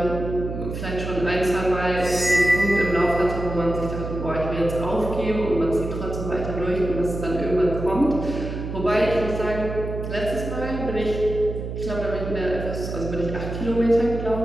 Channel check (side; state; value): right; noise; hum, 6 dB below the sound